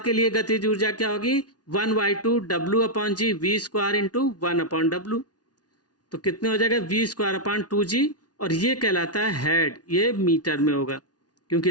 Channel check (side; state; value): right; late; 0.69 ms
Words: लिए गतिज ऊर्जा क्या होगी, 1/2 W अपॉन जी V² इंटू 1/W। तो कितने हो जाएगा, V² अपॉन 2g, और ये कहलाता है हेड। ये मीटर में होगा,